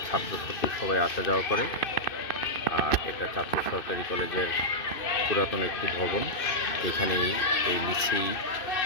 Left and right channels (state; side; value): late; right; 2.6 ms